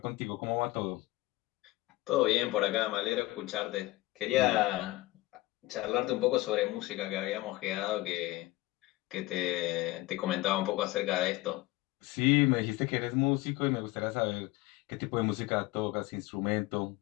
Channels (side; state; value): right; quieter; 19.1 dB